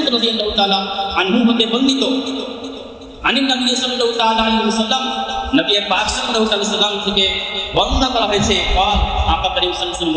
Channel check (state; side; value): identical; both; correlation 1.00